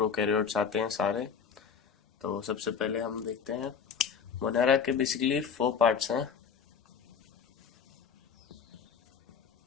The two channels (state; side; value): quieter; right; 6.6 dB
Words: आते हैं सारे। तो सबसे पहले हम देखते हैं मोनेरा के बेसिकली 4 पार्ट्स हैं।